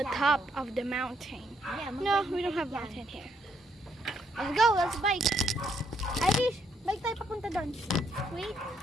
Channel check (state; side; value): normal; both; correlation 0.73